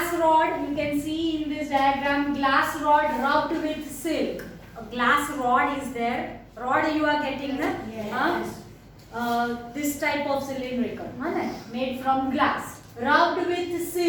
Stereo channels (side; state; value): both; identical; correlation 1.00